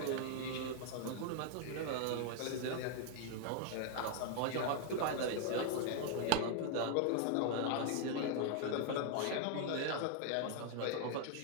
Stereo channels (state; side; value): different; both; correlation 0.00